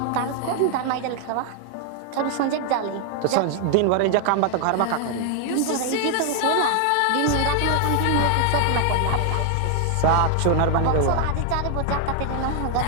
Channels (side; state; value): both; different; correlation 0.00